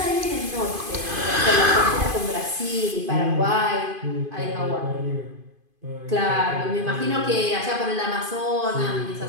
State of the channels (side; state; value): left; late; 2.5 ms